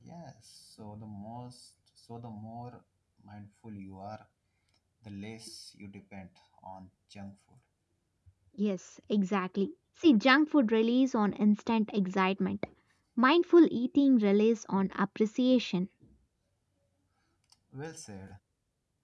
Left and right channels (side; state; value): both; identical; correlation 1.00